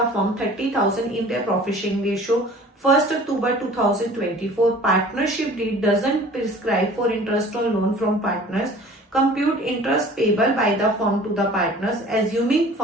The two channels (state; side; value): normal; both; correlation 0.47